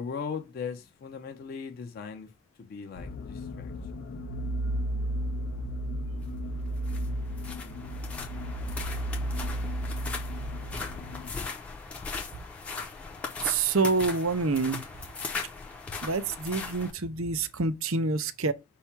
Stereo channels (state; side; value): normal; both; correlation 0.25